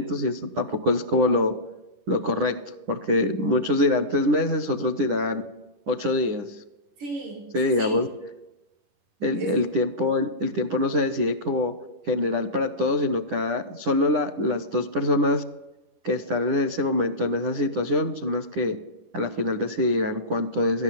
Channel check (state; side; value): late; left; 10 ms